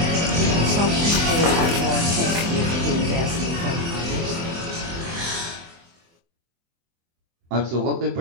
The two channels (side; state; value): left; late; 24 ms